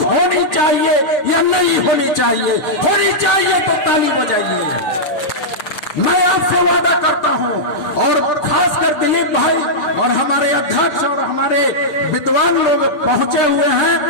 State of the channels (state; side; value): late; right; 6.8 ms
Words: होनी चाहिए या नहीं होनी चाहिए? होनी चाहिए तो ताली बजाइए। मैं आपसे वादा करता हूं, और खासकर दिलीप भाई और हमारे अध्यक्ष और हमारे विद्वान लोग पहुंचे हुए